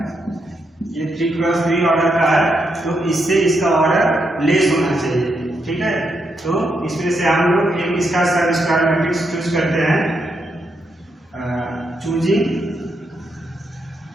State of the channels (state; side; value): normal; both; correlation 0.81